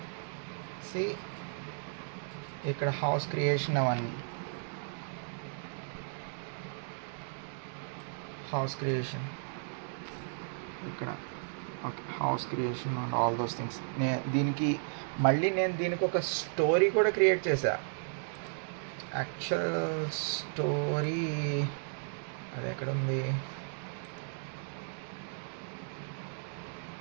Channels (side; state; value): left; silent; digital silence